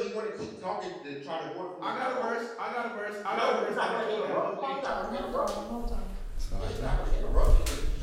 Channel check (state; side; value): identical; both; correlation 1.00